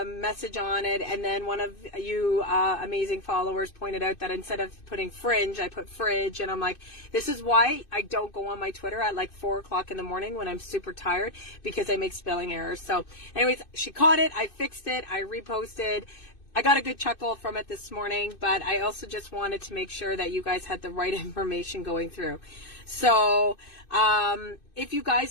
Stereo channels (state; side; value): late; right; 2.6 ms